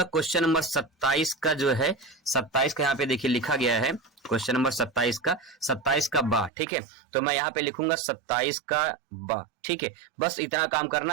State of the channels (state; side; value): drops out; left; at 6.5 s